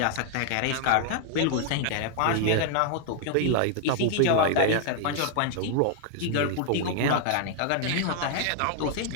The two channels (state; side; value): different; both; correlation 0.00